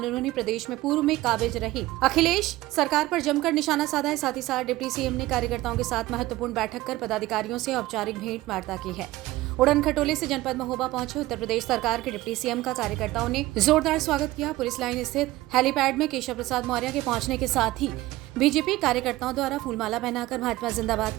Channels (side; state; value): left; quieter; 17.7 dB